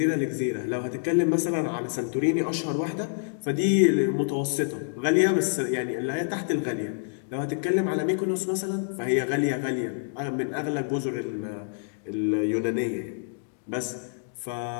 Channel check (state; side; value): silent; right; digital silence